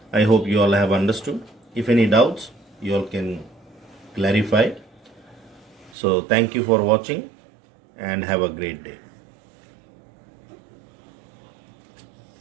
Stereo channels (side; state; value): left; drops out; at 6.0 s